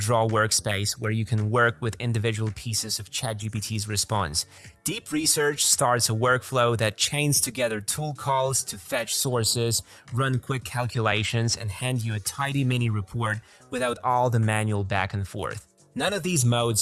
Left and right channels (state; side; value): identical; both; correlation 1.00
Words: workspace where you can work with individual pieces of ChatGPT's response. Deep Research starts a workflow that chains together tool calls to fetch sources, run quick calculations, and hand you a tidy mini report without all the manual back and forth. None of these